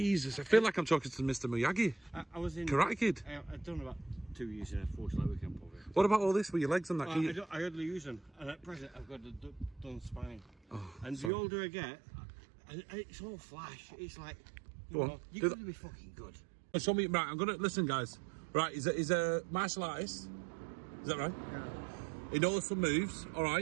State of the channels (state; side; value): drops out; left; at 11.3 s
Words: I feel like I'm talking to Mr. Miyagi. I was in Karate Kid. I've done about 2 years in a force like weekend probably. What about all this with your legs and that? I hardly use them, and at present I've got a done spine. And the older I get, it's all flash. It's like you're going to be fucking good. Show me, right? I'm gonna listen, guys. Right, he's a martial artist. Is that right? Yeah. He knows some moves. All